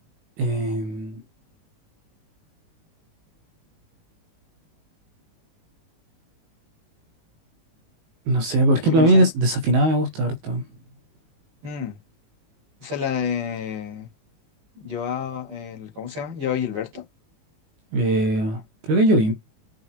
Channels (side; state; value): left; late; 19 ms